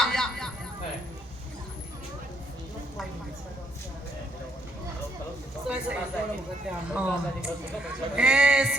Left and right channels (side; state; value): both; normal; correlation 0.70